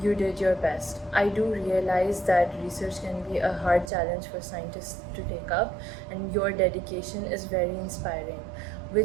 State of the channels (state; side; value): drops out; left; at 3.9 s